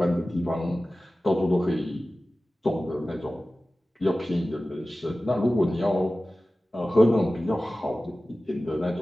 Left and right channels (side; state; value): both; normal; correlation 0.96